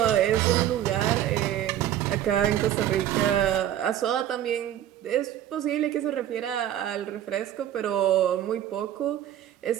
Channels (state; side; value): quieter; left; 11.5 dB